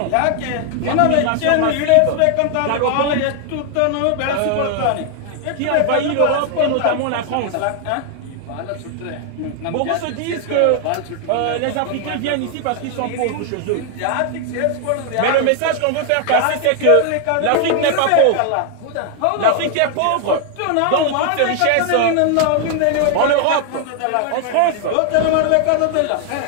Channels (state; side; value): different; both; correlation 0.00